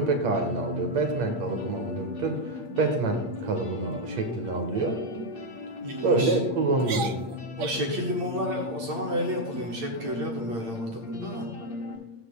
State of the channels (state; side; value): late; left; 8.7 ms